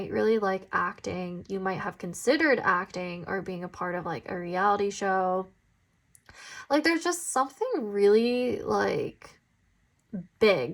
really like acting, you might have considered acting or being a part of like a reality show. Like there's just something really like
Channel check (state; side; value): identical; both; correlation 1.00